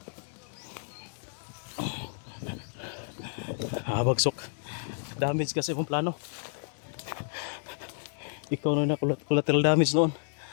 Bagsok. Damage kasi mong plano. Ikaw na collateral damage noon.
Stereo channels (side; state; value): right; silent; 57 dB below the other